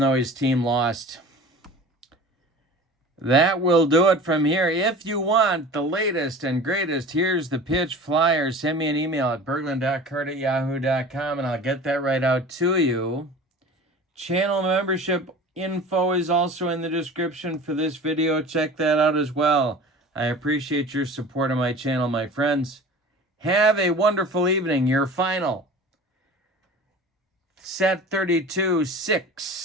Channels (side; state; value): both; normal; correlation 0.39